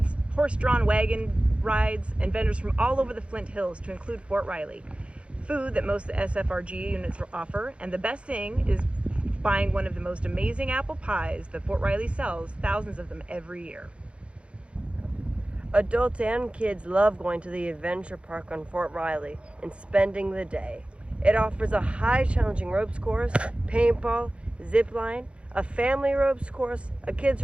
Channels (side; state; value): left; late; 0.059 ms